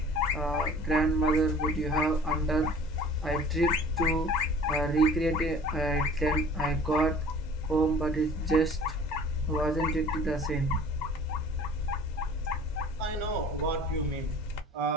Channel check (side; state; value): both; normal; correlation 0.46